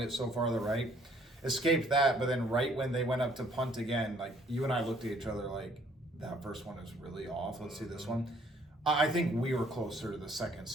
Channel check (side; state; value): both; normal; correlation 0.62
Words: so far to the right. Escaped that, but then right when they went up to punt again, like you and I looked at each other like, that first one is really off. Let's see this one. I think we were closer to the second